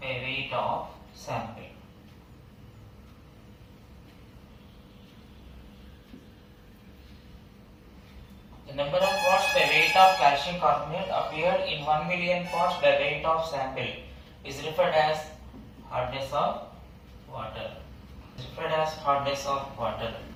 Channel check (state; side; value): identical; both; correlation 1.00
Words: weight of sample. The number of parts by weight of calcium carbonate appeared in 1 million parts by weight of sample is referred as hardness of water. Referred as hardness of water.